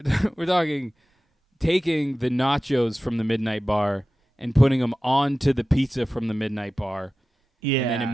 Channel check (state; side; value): normal; both; correlation 0.95